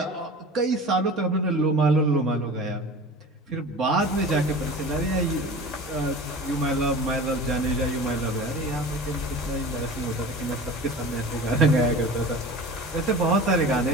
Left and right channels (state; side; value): normal; both; correlation 0.37